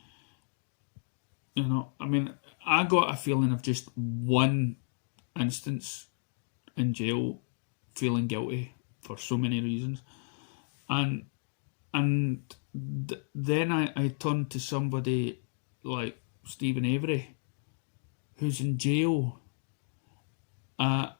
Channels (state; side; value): silent; right; digital silence